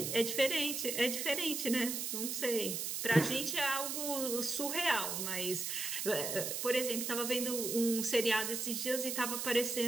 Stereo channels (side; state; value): right; noise; hiss, 2 dB below the sound